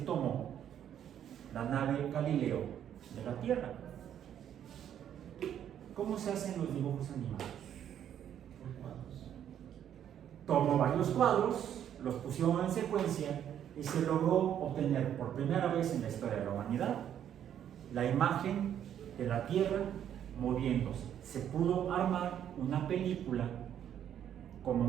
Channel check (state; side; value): quieter; left; 9.9 dB